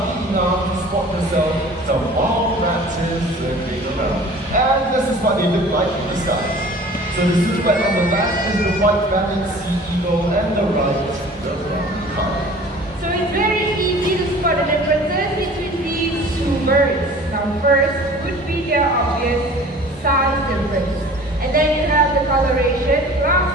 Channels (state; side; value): normal; both; correlation 0.45